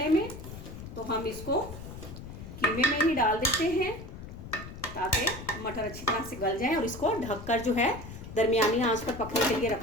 में। तो हम इसको कीमे में ही डाल देते हैं ताकि मटर अच्छी तरह से गल जाए, और इसको ढककर जो है दरमियानी आंच पर पकने के लिए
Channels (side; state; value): left; noise; rumble, 12 dB below the sound